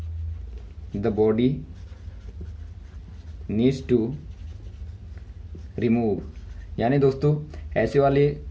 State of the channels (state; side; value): identical; both; correlation 1.00